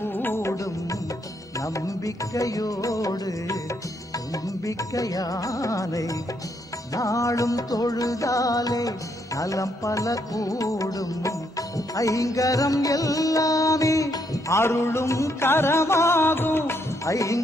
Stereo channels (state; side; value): normal; both; correlation 0.75